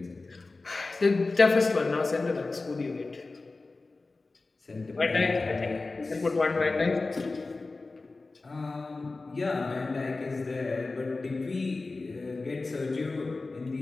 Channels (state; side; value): quieter; right; 3.5 dB